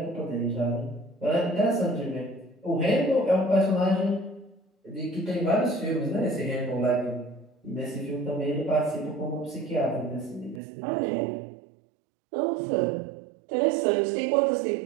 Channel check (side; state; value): left; drops out; at 10.6 s